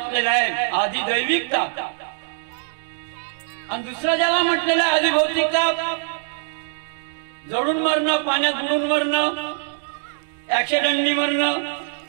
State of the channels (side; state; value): left; silent; digital silence